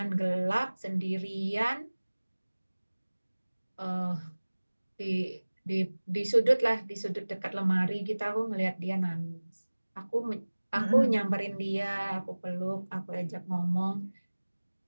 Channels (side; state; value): both; inverted; correlation -1.00